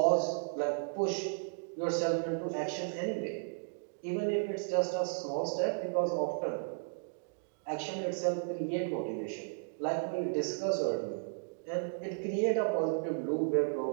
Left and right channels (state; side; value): silent; left; digital silence